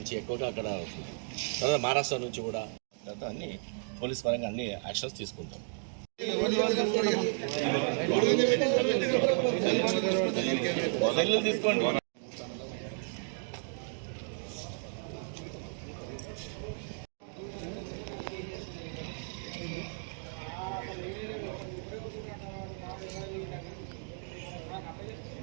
ఎక్కువగా అక్కడ అవుతుంది. తర్వాత మహారాష్ట్ర నుంచి కూడా అన్ని పోలీస్ పరంగా అన్ని యాక్షన్స్ తీసుకుంటాం. తీసుకోండి.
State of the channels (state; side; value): silent; left; 55 dB below the other